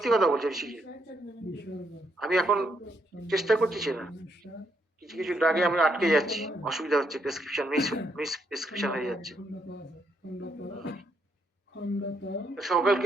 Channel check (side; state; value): both; normal; correlation 0.76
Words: কথা বলছি, শিখে আমি এখন চেষ্টা করছি না। কিছু কিছু ড্রাগে আমি আটকে যাচ্ছি, অসুবিধা হচ্ছে, প্রেসক্রিপশন মিস প্রেসক্রিপশন হয়ে যাচ্ছে।